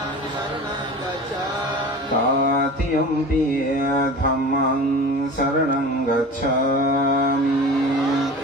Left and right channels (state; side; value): normal; both; correlation 0.36